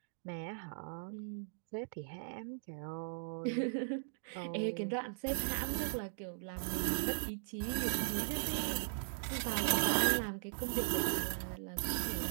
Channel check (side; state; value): left; silent; digital silence